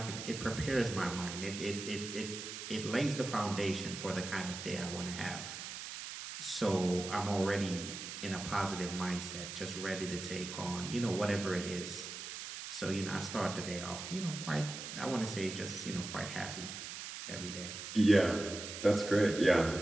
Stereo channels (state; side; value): noise; right; hiss, 8 dB below the sound